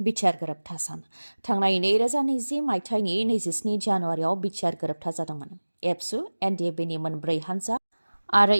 बिटिआर गोरोबथा सान। थांनाय 2020 मायथाइनि 27 जानुवारियाव बिटिआर गोरोबथा जादोंमोन। एबसु, एनडिएफबिनि मोनब्रै हान्जा आरो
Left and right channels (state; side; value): inverted; both; correlation -1.00